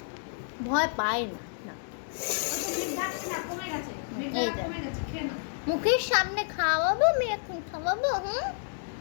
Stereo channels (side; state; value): right; silent; digital silence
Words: ভয় পায় না, না। এই দেখ। মুখের সামনে খাওয়াবো, আমি এখন খাওয়াবো।